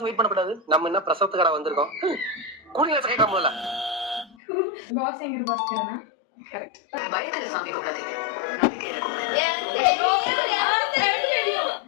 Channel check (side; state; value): right; drops out; at 4.4 s